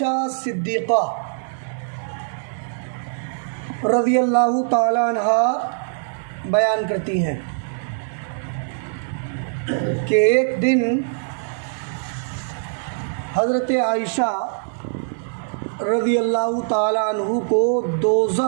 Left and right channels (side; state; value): left; silent; digital silence